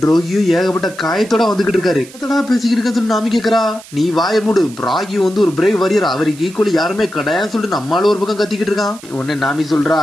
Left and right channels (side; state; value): right; noise; hiss, 20 dB below the sound